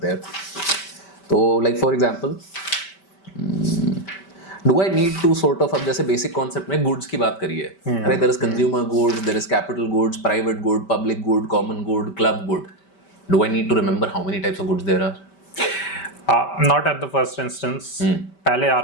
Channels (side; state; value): right; late; 5.1 ms